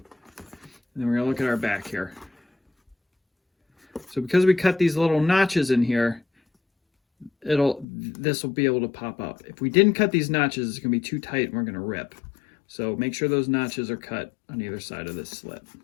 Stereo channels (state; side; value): drops out; right; at 7.9 s